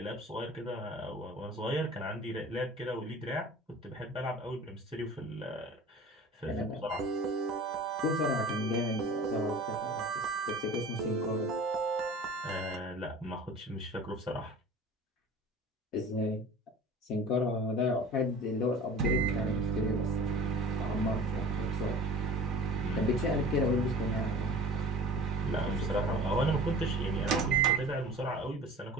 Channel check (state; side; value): normal; both; correlation 0.41